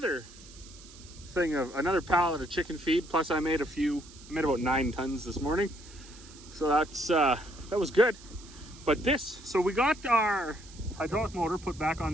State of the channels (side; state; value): right; noise; hiss, 20 dB below the sound